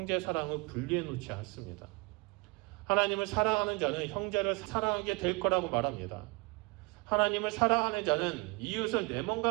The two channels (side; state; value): left; quieter; 27.2 dB